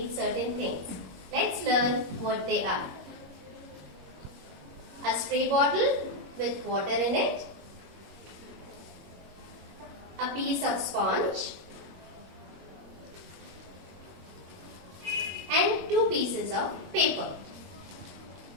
certain things. Let's learn what they are. A spray bottle with water in it, a piece of sponge and two pieces of paper.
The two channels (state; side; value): late; left; 21 ms